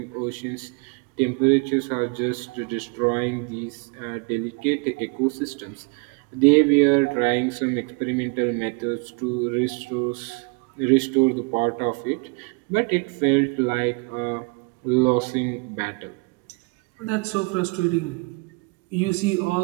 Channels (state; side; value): quieter; left; 30.4 dB